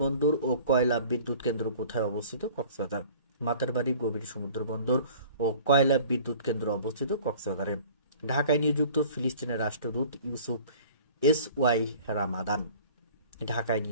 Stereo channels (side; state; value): both; inverted; correlation -0.48